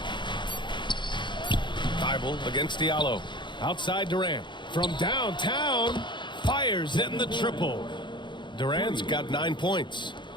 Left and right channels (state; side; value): late; right; 0.23 ms